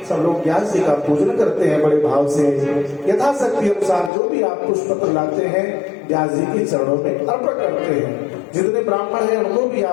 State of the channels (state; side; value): drops out; right; at 4.1 s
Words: सब लोग व्यास जी का पूजन करते हैं बड़े भाव से। यथाशक्ति अनुसार जो भी आप पुष्प पत्र लाते हैं व्यास जी के चरणों में अर्पण करते हैं। जितने ब्राह्मण हैं उनको भी